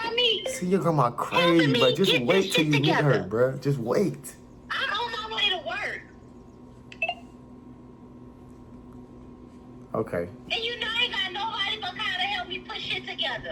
me. See your grandma crazy, but just wait till you meet her, bruh. Just wait. I'm on my way to work. Okay. And you know I ain't got nobody but Kyle to help me put shit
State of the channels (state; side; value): identical; both; correlation 1.00